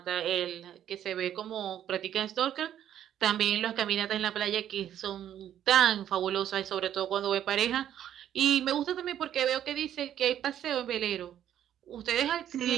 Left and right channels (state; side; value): quieter; left; 10.7 dB